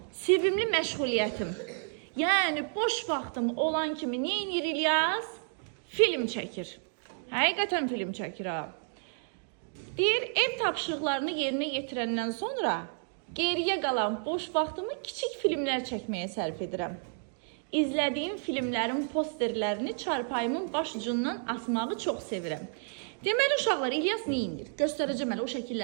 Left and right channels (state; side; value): silent; left; 57 dB below the other